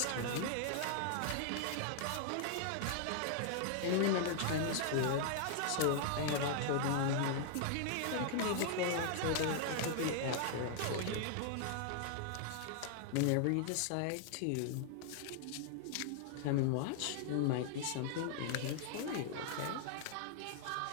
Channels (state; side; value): different; both; correlation -0.01